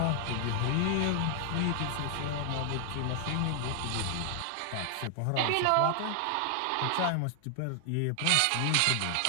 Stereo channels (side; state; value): both; different; correlation 0.00